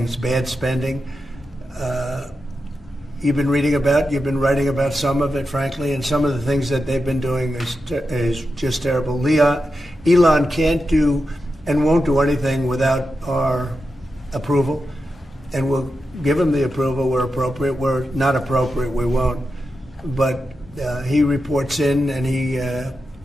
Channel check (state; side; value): normal; both; correlation 0.89